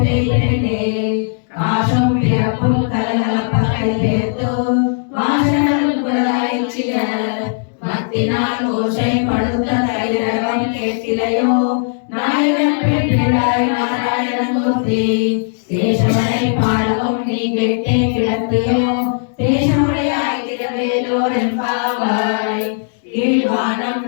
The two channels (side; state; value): right; silent; digital silence